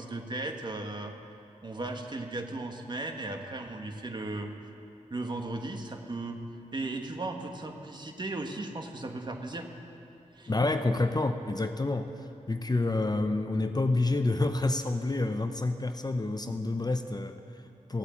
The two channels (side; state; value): both; normal; correlation 0.83